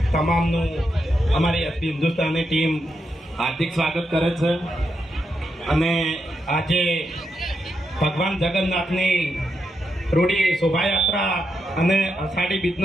તમામનું અમારી એસપી હિન્દુસ્તાની ટીમ હાર્દિક સ્વાગત કરે છે. અને આજે ભગવાન જગન્નાથની રૂડી શોભાયાત્રા અને અષાઢી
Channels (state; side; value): normal; both; correlation 0.84